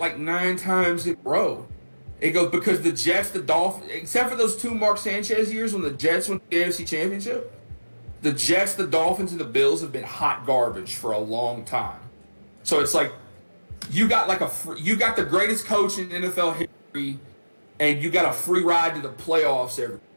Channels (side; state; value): both; inverted; correlation -1.00